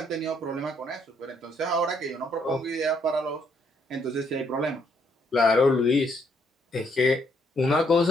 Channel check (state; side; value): normal; both; correlation 0.71